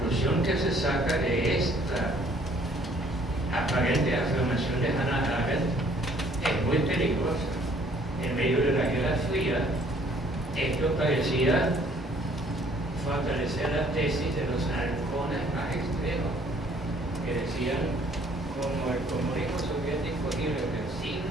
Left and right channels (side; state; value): both; normal; correlation 0.60